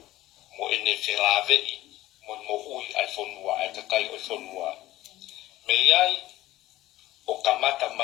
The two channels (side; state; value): right; quieter; 16.2 dB